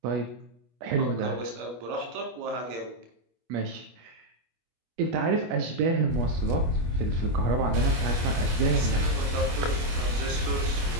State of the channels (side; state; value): left; late; 25 ms